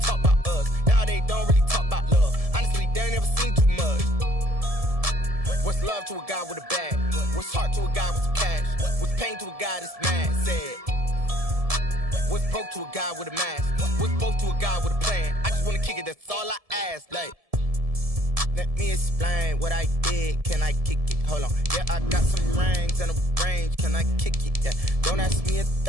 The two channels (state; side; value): late; left; 1.7 ms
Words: about us. Now they don't really talk about love. Honestly, they ain't never seen too much. What's love to a guy with a bag? What's heart to a guy with some cash? What's pain to a guy that's mad? Said. What's broke to a guy with a mask? What's both to a guy with a plan? I just wanna kick it, that's all I ask. Like, let me explain what I did. Can I kick it? Hold on. Yeah, I got some rings and a range. Can I kick it? Yeah. Don't ask me a